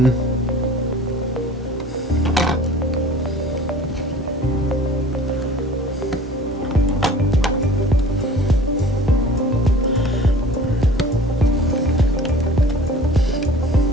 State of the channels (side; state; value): both; normal; correlation 0.45